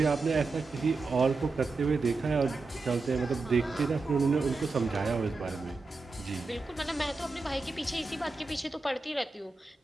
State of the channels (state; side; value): quieter; left; 3.7 dB